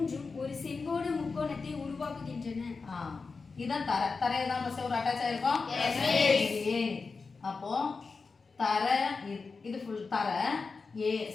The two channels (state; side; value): quieter; right; 4.5 dB